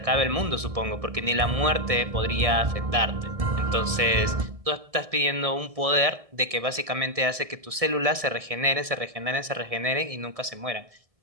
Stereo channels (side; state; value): left; late; 1.6 ms